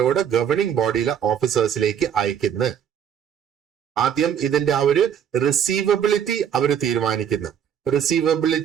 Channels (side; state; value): left; quieter; 8.7 dB